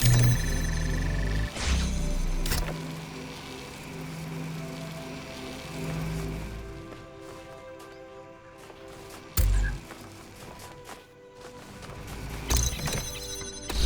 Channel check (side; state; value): both; identical; correlation 1.00